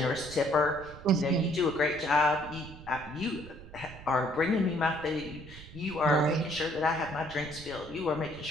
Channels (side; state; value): right; noise; rumble, 16 dB below the sound